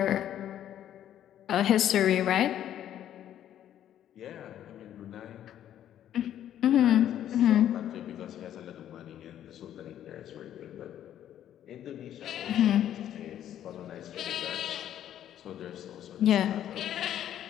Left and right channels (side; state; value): right; quieter; 11.0 dB